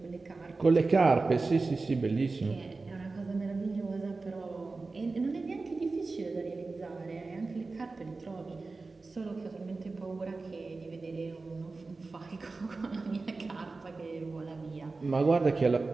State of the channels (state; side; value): quieter; left; 3.8 dB